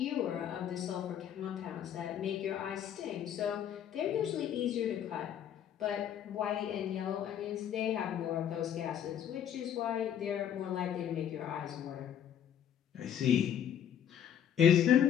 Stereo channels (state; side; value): quieter; right; 9.4 dB